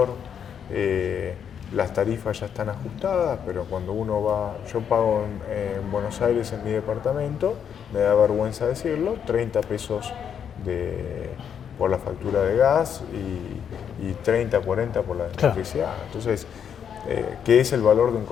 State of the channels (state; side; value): quieter; right; 8.1 dB